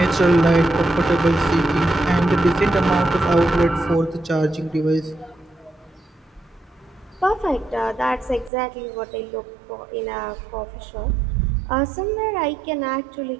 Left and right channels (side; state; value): left; drops out; at 8.5 s